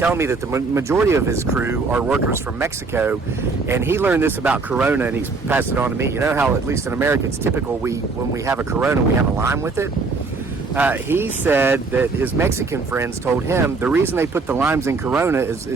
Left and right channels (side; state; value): left; quieter; 4.0 dB